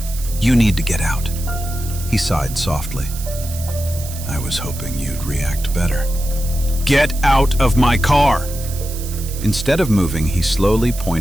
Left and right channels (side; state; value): right; noise; hiss, 12 dB below the sound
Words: "You need to get out." He sighed softly. "I was hoping you'd react better." "Get out of my car!" Instead of moving, he slowly